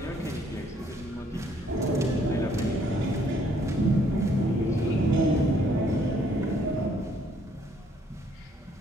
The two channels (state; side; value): normal; both; correlation 0.65